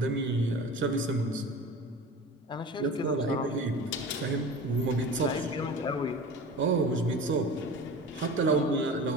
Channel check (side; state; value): both; normal; correlation 0.35